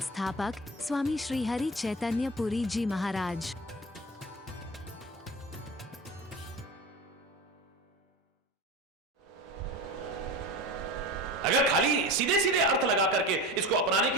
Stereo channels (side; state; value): both; normal; correlation 0.31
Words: स्वामी श्री हरि चैतन्य पुरी जी महाराज। अगर खाली सीधे सीधे अर्थ लगा करके इसको अपनाने